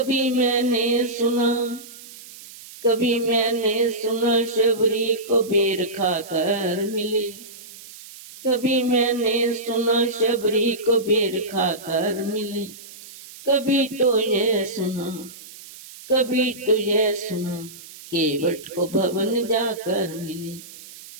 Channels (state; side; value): noise; right; hiss, 17 dB below the sound